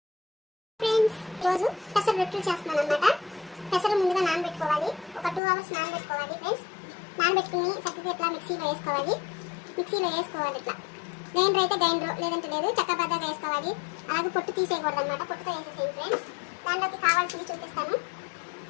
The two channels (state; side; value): drops out; right; at 5.4 s